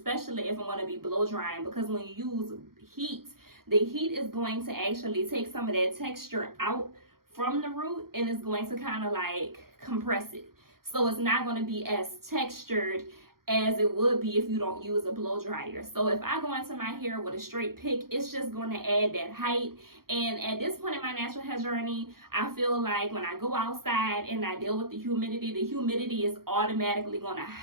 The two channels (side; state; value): left; late; 0.93 ms